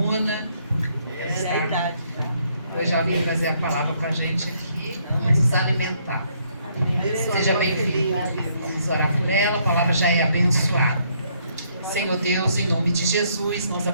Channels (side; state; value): both; inverted; correlation -0.70